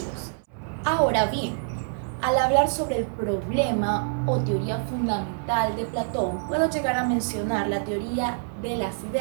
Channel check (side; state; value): left; silent; 61 dB below the other